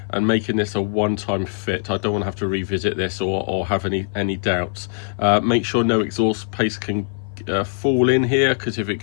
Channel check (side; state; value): right; silent; 57 dB below the other